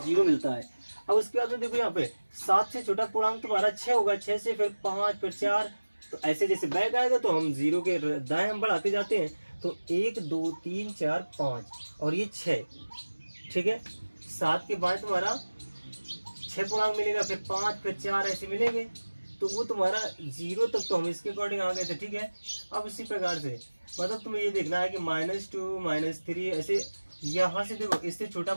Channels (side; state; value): both; inverted; correlation -1.00